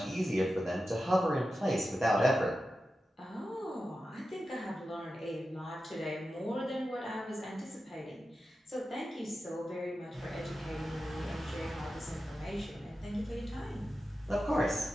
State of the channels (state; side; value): normal; both; correlation 0.92